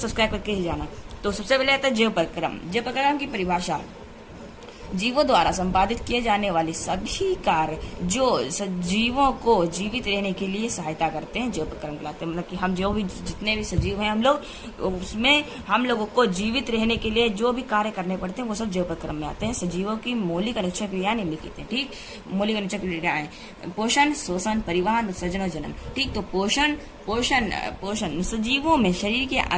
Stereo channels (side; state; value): both; identical; correlation 1.00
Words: करके ही जाना। तो सबसे पहले आता है जीव परिक्रम। जीव परिक्रम की परिभाषा: जीवों द्वारा संपादित किए जाने वाले सभी कार्य जो सजीवों को जीवित रहने के लिए सहायता करते हैं जीव परिक्रम कहलाते हैं। मतलब कि हम जो भी जितने भी सजीव हैं हम लोग, उसमें हम लोगों को जीवित रहने के लिए जो भी कार्य करने पड़ते हैं वो सब जीव परिक्रम में आते हैं। सजीवों की मौलिक अनिश्चय क्रियाएं निम्नलिखित हैं। ठीक, मौलिक अनिश्चय क्रियाएं: पोषण, शोषण, परिवहन, उत्सर्जन और जनन। ठीक, तो पोषण सजीवों में शरीर के